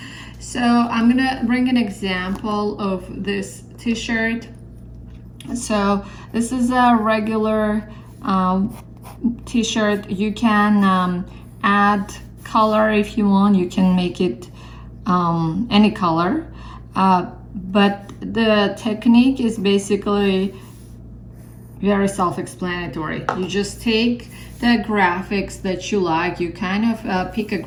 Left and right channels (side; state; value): both; identical; correlation 1.00